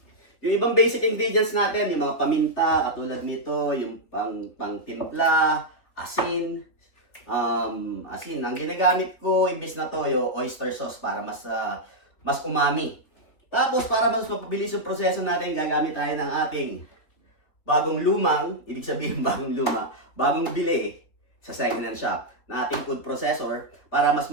Yung ibang basic ingredients natin, yung mga paminta, katulad nito, yung pang-timpla, asin. Asin, ang ginagamit ko, imbis na toyo, oyster sauce para mas umami. Tapos, para mas mapabilis yung proseso natin, gagamit tayo ng ating bagong lumang, ibig sabihin bagong bili sa second-hand shop na ating food processor para mas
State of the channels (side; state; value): right; late; 3.4 ms